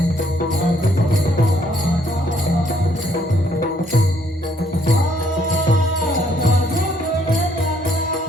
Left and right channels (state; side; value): normal; both; correlation 0.68